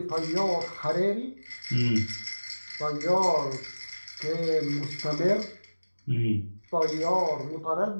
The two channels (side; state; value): both; inverted; correlation -1.00